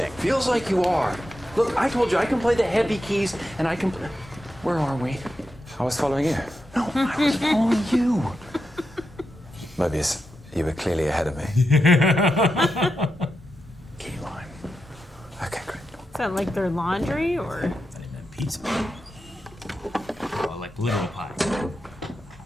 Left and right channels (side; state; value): both; normal; correlation 0.87